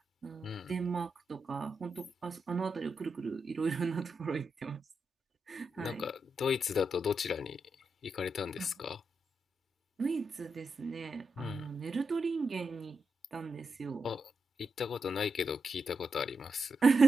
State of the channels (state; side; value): normal; both; correlation 0.85